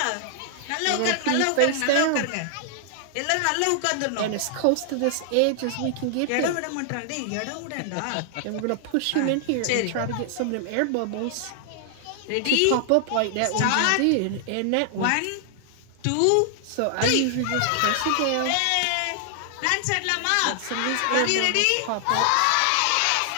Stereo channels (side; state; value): both; different; correlation 0.00